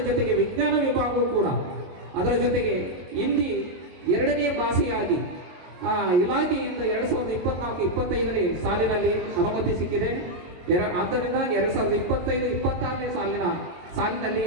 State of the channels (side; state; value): left; late; 22 ms